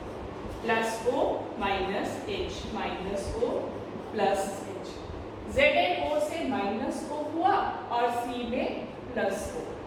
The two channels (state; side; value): identical; both; correlation 1.00